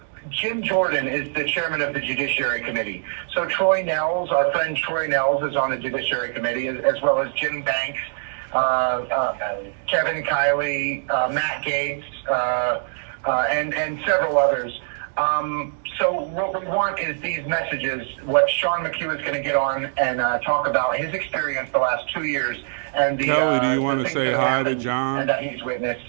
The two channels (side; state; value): left; silent; 63 dB below the other